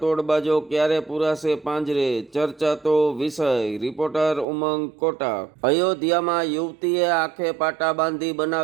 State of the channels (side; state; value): left; drops out; at 4.5 s